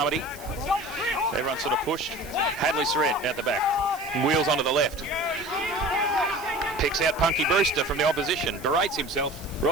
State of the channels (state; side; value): noise; right; hiss, 19 dB below the sound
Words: Everyone sort of pushed. Hadley Surrett out the back. Wheels onto the left. Picks out Punky Brewster from the opposition. Berates himself